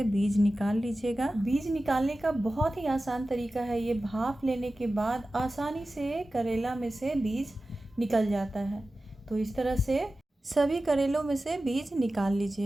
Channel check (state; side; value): normal; both; correlation 0.95